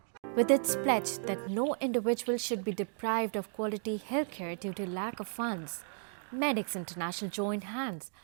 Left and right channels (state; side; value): silent; left; 55 dB below the other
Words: With its pledge that no individual should be deprived of quality healthcare due to lack of funds, Medics International joined hands